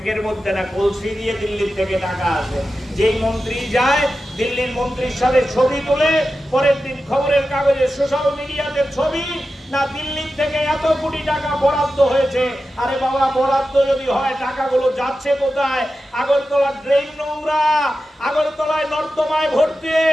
মধ্যে না কলসি দিয়ে দিল্লির থেকে টাকা আসে। যেই মন্ত্রী যায় দিল্লির মন্ত্রীর সাথে ছবি তুলে পরের দিন খবরের কাগজে সোশ্যাল মিডিয়াতে ছবি, না দিল্লির থেকে এত কোটি টাকা বরাদ্দ হয়েছে। আরে বাবা, বরাদ্দ যদি হয় টাকাগুলো যাচ্ছে কোথায়? আগরতলা ড্রেন নোংরা, আগরতলায় নর্দমায় ভর্তি।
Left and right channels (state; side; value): normal; both; correlation 0.92